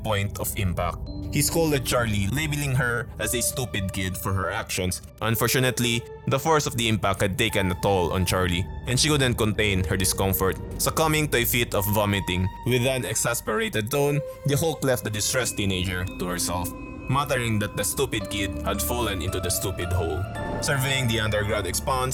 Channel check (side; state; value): both; identical; correlation 1.00